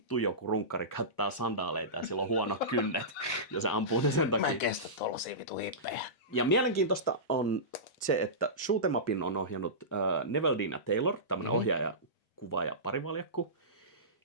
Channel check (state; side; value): normal; both; correlation -0.20